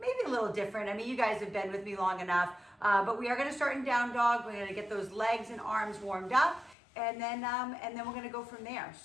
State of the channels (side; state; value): right; drops out; at 6.8 s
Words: a little different. I mean, you guys have been with me long enough, but we are gonna start in down dog. We're gonna get those legs and arms warmed up, and then we're gonna go from there.